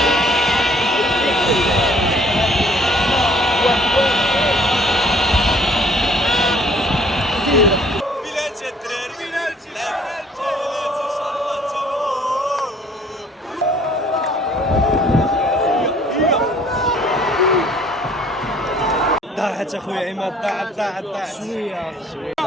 ضاعت اخويا عماد ضاعت شويه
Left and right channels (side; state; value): both; normal; correlation 0.57